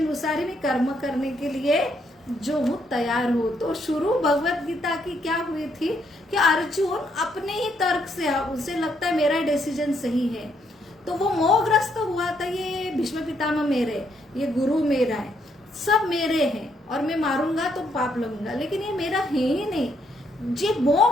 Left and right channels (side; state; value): both; normal; correlation 0.74